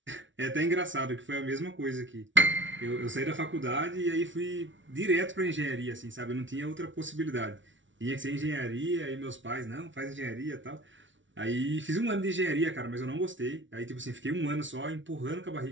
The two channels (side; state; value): left; late; 0.56 ms